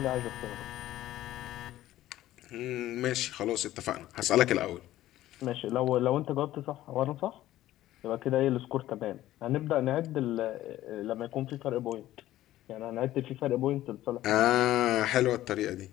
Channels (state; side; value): quieter; right; 14.5 dB